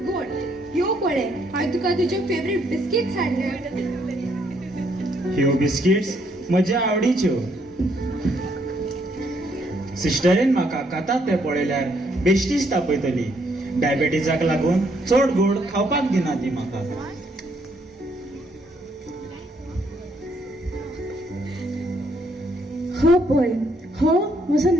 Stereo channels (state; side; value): normal; both; correlation 0.71